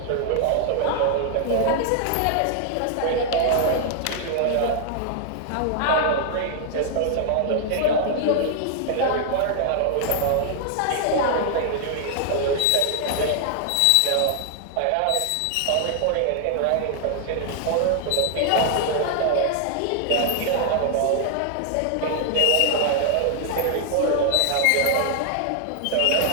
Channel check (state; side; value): different; both; correlation 0.00